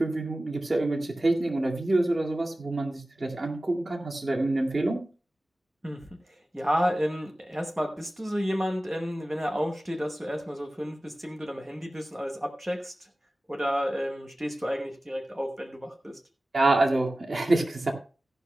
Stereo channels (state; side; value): normal; both; correlation 0.96